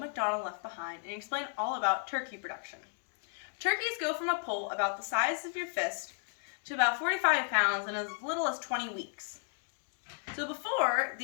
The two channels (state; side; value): silent; right; digital silence